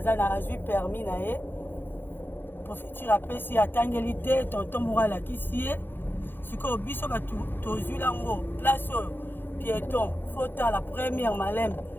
ça na eu permis na ye. Profiter après si atangeli te tonton morala kisi. Siko biso ba to zulango place piéton. Faut la première malem.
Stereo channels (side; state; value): right; late; 0.098 ms